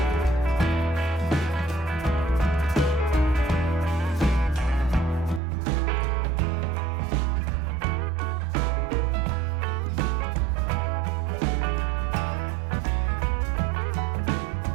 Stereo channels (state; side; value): drops out; left; at 5.4 s